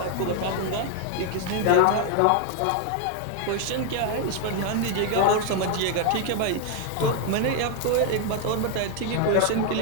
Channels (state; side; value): different; both; correlation 0.00